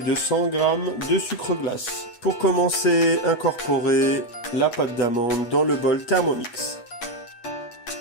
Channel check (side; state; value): right; late; 8.2 ms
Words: de 100 g de sucre glace. Pour commencer, incorporez la pâte d'amande dans le bol Thermomix.